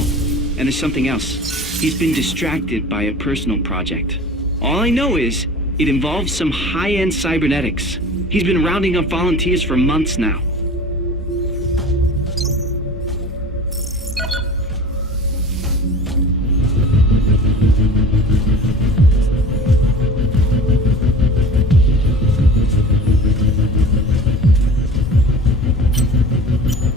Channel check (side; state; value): both; normal; correlation 0.39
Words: And there's something else. He's been distracted by a personal project. All I know is it involves some high-end cybernetics. He's been rounding up volunteers for months now.